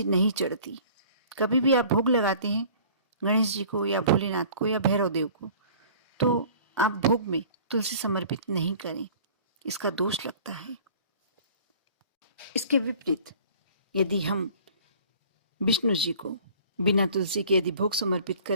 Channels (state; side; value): inverted; both; correlation -0.49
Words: नहीं चढ़ती। कभी भी आप भोग लगाते हैं गणेश जी को या भोलेनाथ को या भैरव देव को, तो आप भोग में तुलसी समर्पित नहीं करें, इसका दोष लगता है। इसके विपरीत यदि हम विष्णु जी को बिना तुलसी के यदि भोग समर्पित